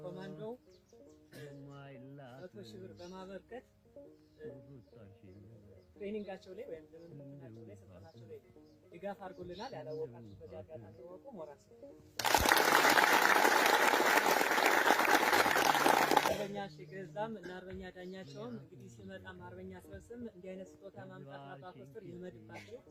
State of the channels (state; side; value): identical; both; correlation 1.00